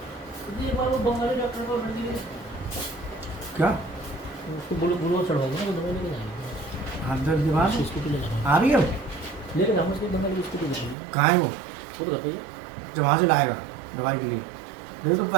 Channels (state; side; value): drops out; left; at 11.0 s